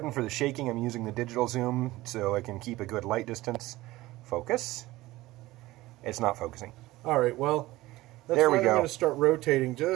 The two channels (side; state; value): left; quieter; 18.2 dB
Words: for the shaking. I'm using the digital zoom so I can keep a good light distance. Focus. It's not focusing. All right, well, There we I'm go. going to start rotating